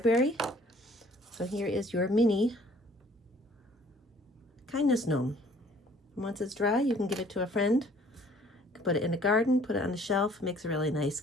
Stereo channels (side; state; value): both; normal; correlation 0.56